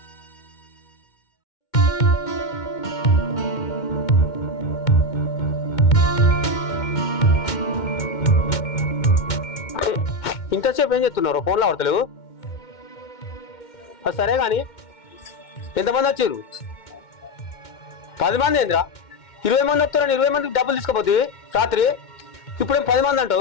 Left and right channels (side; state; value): right; late; 2.2 ms